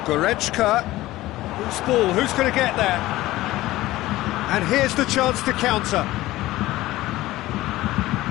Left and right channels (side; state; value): right; quieter; 17.1 dB